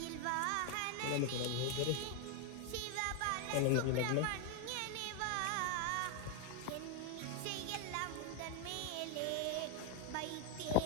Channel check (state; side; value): different; both; correlation 0.01